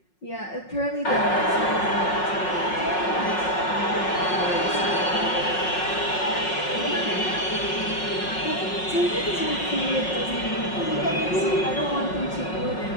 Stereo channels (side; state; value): right; late; 5.5 ms